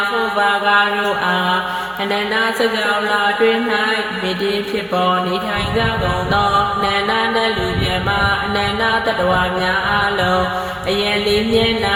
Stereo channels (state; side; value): identical; both; correlation 1.00